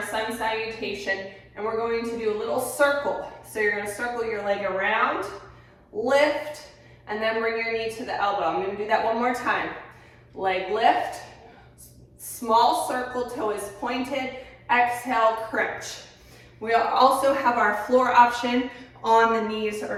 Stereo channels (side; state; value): both; identical; correlation 1.00